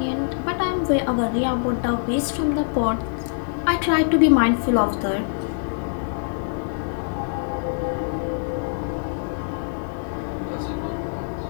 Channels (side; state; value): right; silent; digital silence